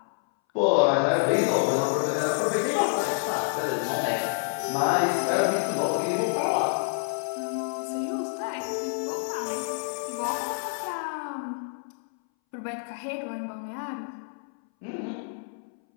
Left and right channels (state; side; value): silent; right; 60 dB below the other